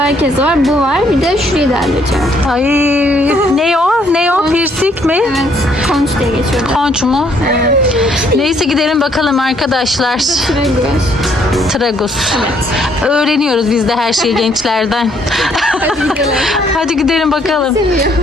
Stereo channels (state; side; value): normal; both; correlation 0.67